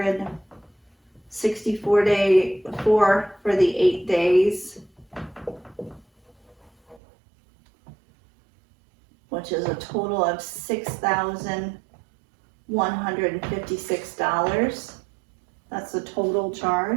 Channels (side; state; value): left; drops out; at 7.0 s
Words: for the 8 days, which is a total of $6,156. That's the total